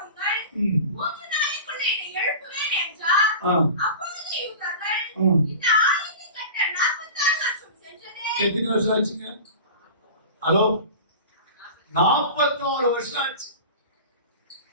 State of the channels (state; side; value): inverted; both; correlation -0.34